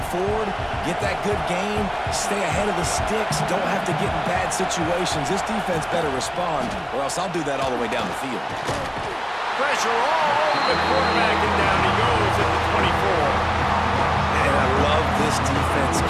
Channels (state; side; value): identical; both; correlation 1.00